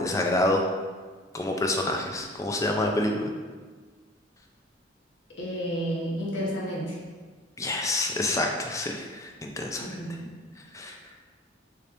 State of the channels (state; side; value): normal; both; correlation 0.43